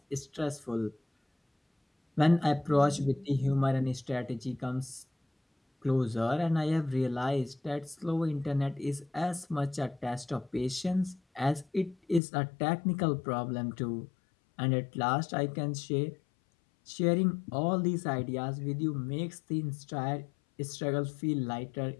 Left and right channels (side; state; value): right; drops out; at 12.2 s